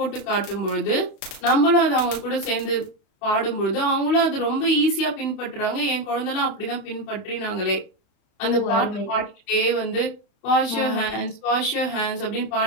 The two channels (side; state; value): right; late; 31 ms